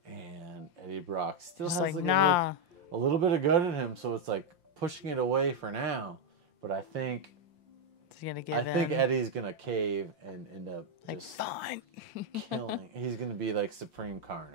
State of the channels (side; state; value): left; late; 5.7 ms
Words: And Eddie Brock still Just has like, like nah. a little bit of good in him, so it's like pushing it away for now. But I think Eddie's gonna cave and end up Like, just fine. killing. He's gonna be like Supreme